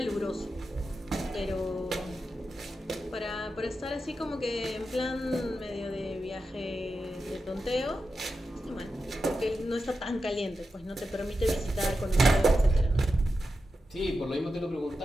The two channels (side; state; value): both; normal; correlation 0.90